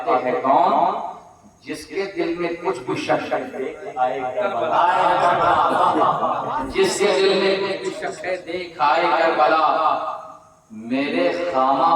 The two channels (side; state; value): both; identical; correlation 1.00